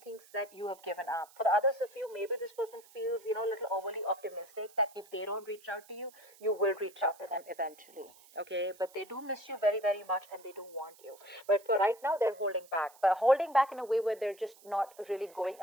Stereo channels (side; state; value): right; noise; hiss, 24 dB below the sound